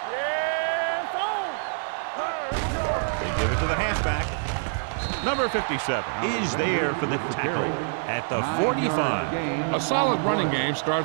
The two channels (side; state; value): left; silent; digital silence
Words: Yeah, it's on. They give it to the halfback. Number 57 is there for the tackle at the 45. A solid running game